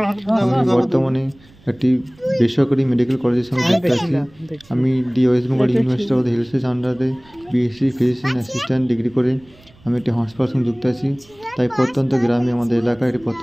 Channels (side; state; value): right; noise; rumble, 27 dB below the sound